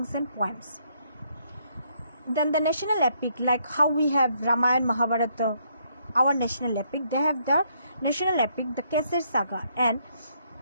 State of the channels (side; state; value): both; inverted; correlation -0.71